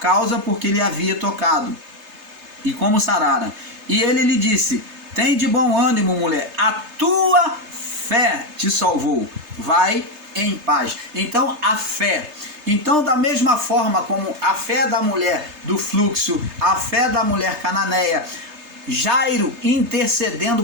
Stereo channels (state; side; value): late; left; 3.3 ms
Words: porque lhe havia tocado, e como sarara. E ele lhe disse: tem de bom ânimo, mulher, a tua fé te salvou, vai em paz. Então a fé. Então, da mesma forma como a fé da mulher do fluxo, a fé da mulher cananeia, Jairo